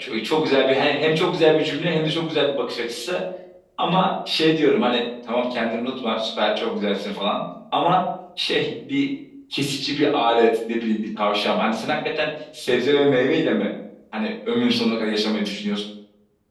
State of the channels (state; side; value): identical; both; correlation 1.00